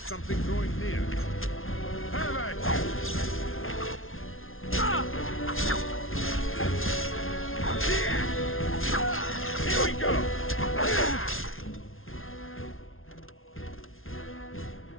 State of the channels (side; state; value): right; late; 0.61 ms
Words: drawing near. Have at you! Here we go!